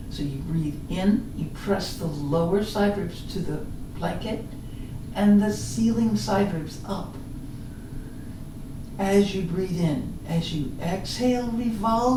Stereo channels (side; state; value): both; identical; correlation 1.00